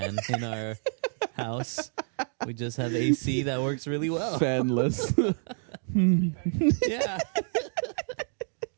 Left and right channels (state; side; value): silent; left; 59 dB below the other